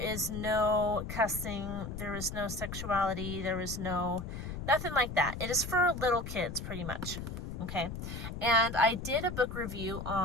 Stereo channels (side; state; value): left; noise; rumble, 7 dB below the sound